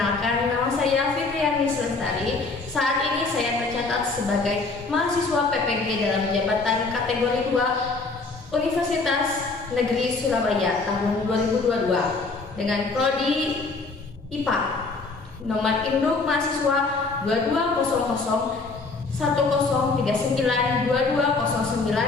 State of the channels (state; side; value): quieter; right; 3.8 dB